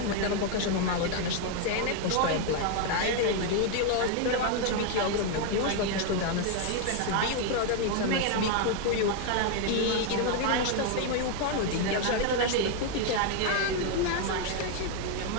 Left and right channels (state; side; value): different; both; correlation 0.00